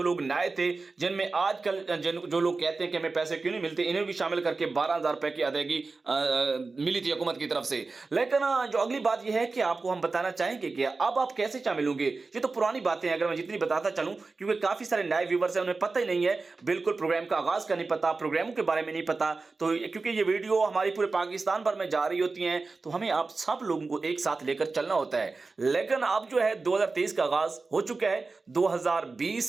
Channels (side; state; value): left; quieter; 3.9 dB